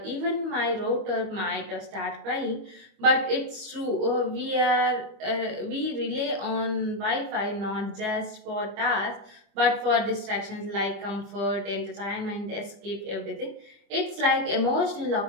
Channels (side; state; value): left; late; 25 ms